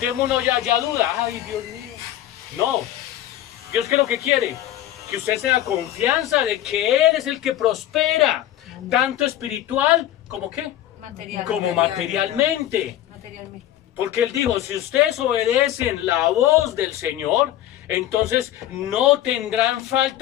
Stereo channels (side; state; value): right; quieter; 12.7 dB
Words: uno ya duda. Ay, Dios mío. No, Dios, ¿qué es lo que quiere? Que usted tenga confianza de que Él es el que prospera, tanto espiritual como ¿qué? Como materialmente. Porque Él dijo, si ustedes obedecen la voz del Señor, entonces no tendrán